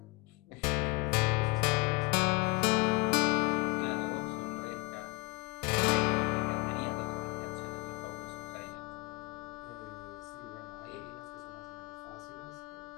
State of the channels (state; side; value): quieter; right; 24.8 dB